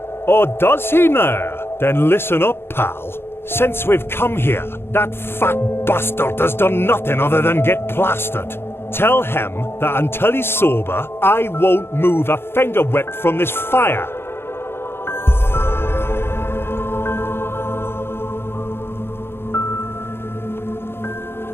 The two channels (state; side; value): late; right; 0.11 ms